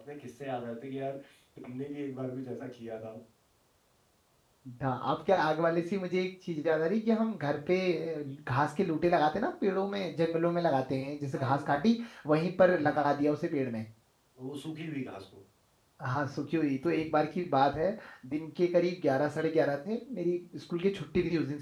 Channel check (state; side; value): identical; both; correlation 1.00